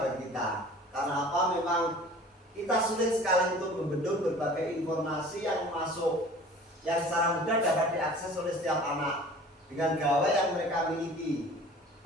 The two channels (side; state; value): both; normal; correlation 0.45